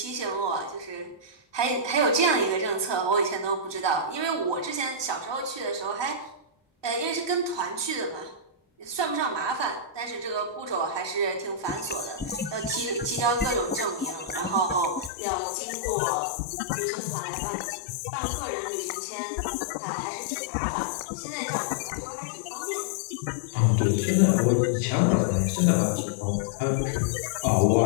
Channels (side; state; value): right; drops out; at 15.1 s